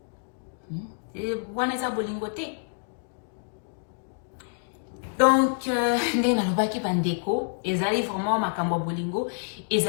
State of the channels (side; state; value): right; silent; digital silence